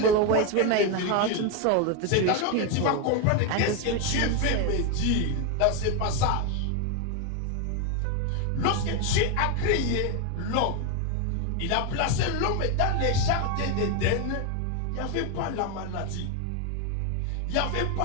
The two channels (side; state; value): both; different; correlation 0.02